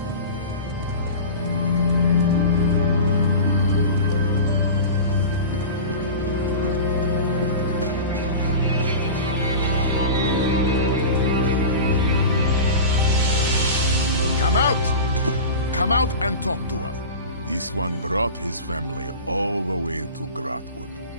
Come out! Come out and talk to us. This one brought his family all the way to Grotwood,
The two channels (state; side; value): inverted; both; correlation -0.31